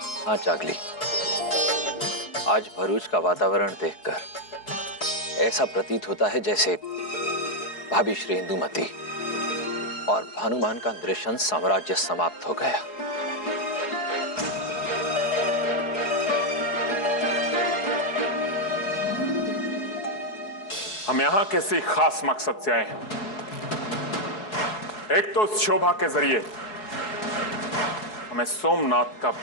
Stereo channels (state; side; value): late; right; 4.7 ms